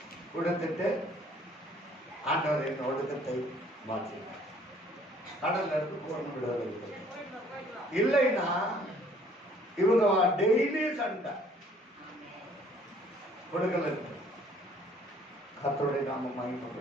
கொடுத்துட்டு ஆண்டவர் என் ஒடுக்கத்தை மாற்றினார். கடல்ல இருந்து பூர்ண விடுதலை இல்லைன்னா இவங்க டெய்லி சண்டை கொடுக்கல இருக்கு. கர்த்தருடைய நாமம்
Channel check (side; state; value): both; normal; correlation 0.58